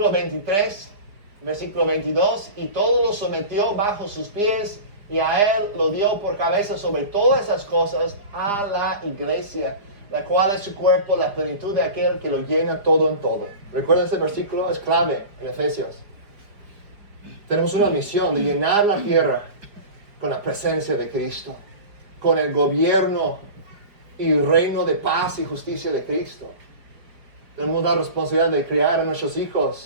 23, versículo 22, y todo lo sometió bajo sus pies, y a él lo dio por cabeza sobre todas esas cosas a la iglesia, la cual es su cuerpo, la plenitud de aquel que lo llena todo en todo. ¿Recuerda ese versículo? Es clave en Efesios. Tenemos una misión de llenar la tierra con la presencia de Cristo, con el gobierno y reino de paz y justicia de Cristo. Tenemos la responsabilidad de criar a nuestros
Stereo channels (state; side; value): late; left; 4.8 ms